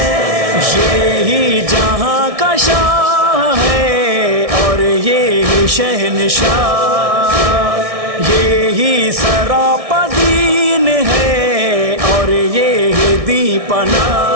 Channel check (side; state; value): left; late; 1.6 ms